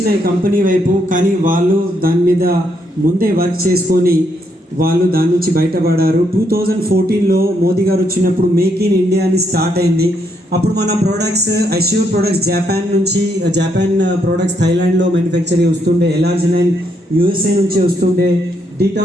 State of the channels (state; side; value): normal; both; correlation 0.75